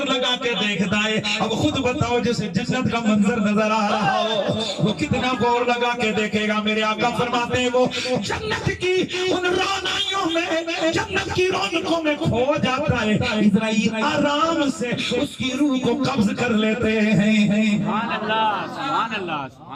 لگا کے دیکھتا ہے۔ اب خود بتاؤ جسے جنت کا منظر نظر آ رہا ہو وہ کتنا غور لگا کے دیکھے گا۔ میرے آقا فرماتے ہیں وہ جنت کی ان رونائیوں میں، جنت کی رونقوں میں کھو جاتا ہے، اسرائیل آرام سے اس کی روح کو قبض کر لیتے ہیں۔ سبحان اللہ، سبحان اللہ،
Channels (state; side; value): identical; both; correlation 1.00